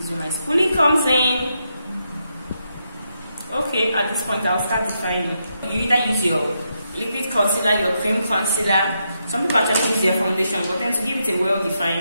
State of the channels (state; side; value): inverted; both; correlation -0.82